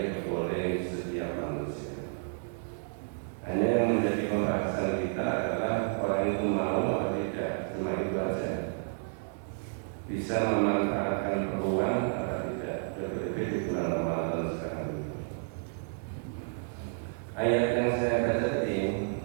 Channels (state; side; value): silent; left; 57 dB below the other